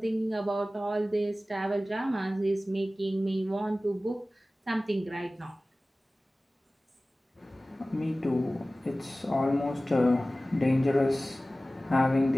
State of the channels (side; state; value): both; normal; correlation 0.97